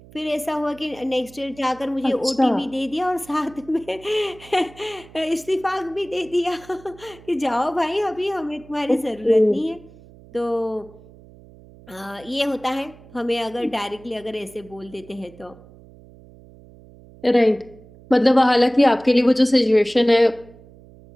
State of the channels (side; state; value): right; noise; hum, 23 dB below the sound